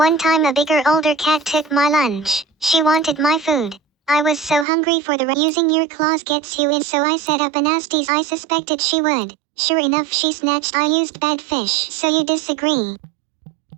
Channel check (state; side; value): drops out; left; at 4.7 s